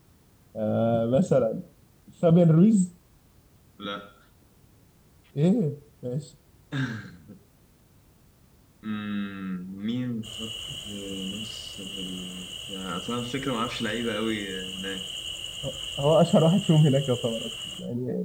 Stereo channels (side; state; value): both; identical; correlation 1.00